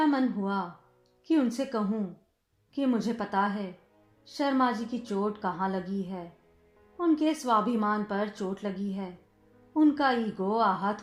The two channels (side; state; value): both; identical; correlation 1.00